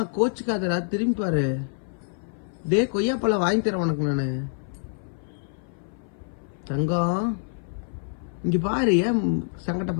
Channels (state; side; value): silent; right; 56 dB below the other